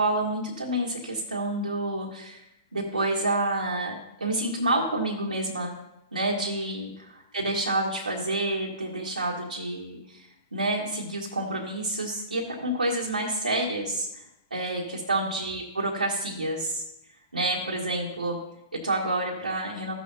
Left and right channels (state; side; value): inverted; both; correlation -0.45